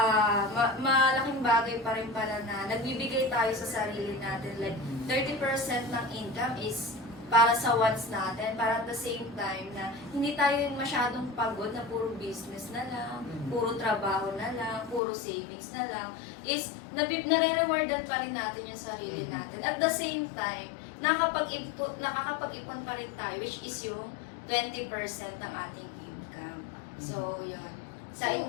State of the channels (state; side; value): drops out; right; at 15.0 s